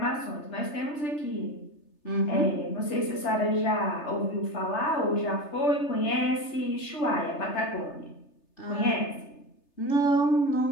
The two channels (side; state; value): right; late; 3.3 ms